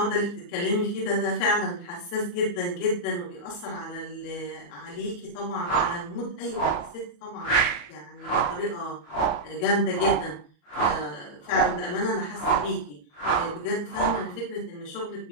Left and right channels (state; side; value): late; right; 34 ms